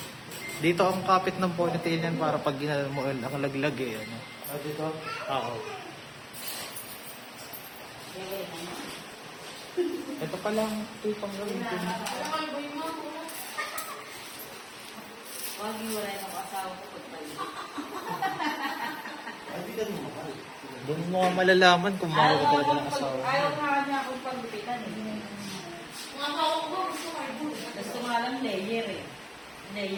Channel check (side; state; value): both; identical; correlation 1.00